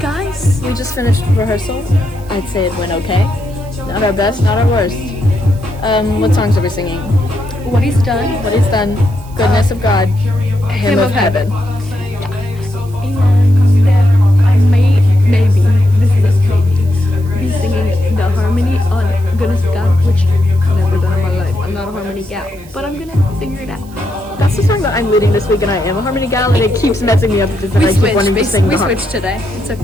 We just finished rehearsal. I'd say it went okay. Not our best, not our worst. What songs are we singing? What He's Done. What He's Done. Goodness of God. Hymn of Heaven. Yeah. And I maybe, this is a maybe, be singing the harmony on Goodness of God, which I've never done in my life. I'm not a harmony gal, but I'm gonna figure it out. That's the song that I'm leading this week, and I am a harmony gal, and it keeps messing me up because I keep wanting to sing the harmony. We switched today. It's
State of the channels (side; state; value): right; noise; hiss, 25 dB below the sound